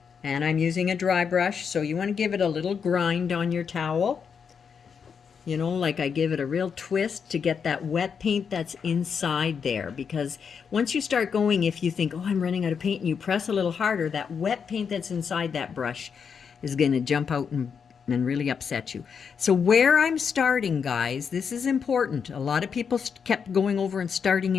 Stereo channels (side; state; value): right; quieter; 6.5 dB